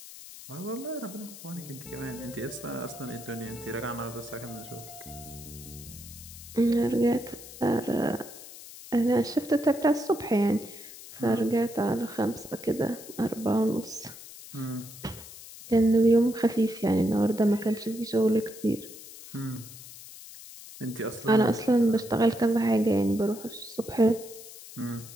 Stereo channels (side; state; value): left; noise; hiss, 16 dB below the sound